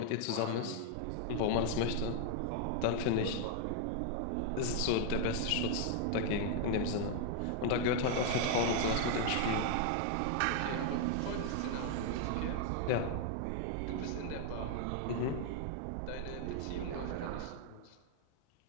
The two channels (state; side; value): different; both; correlation 0.00